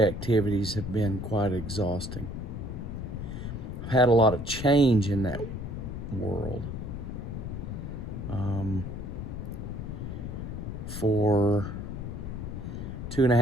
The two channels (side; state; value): left; noise; rumble, 6 dB below the sound